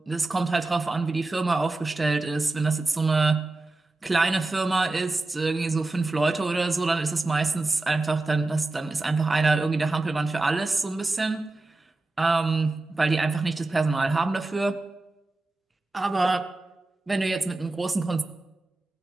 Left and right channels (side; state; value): left; quieter; 3.1 dB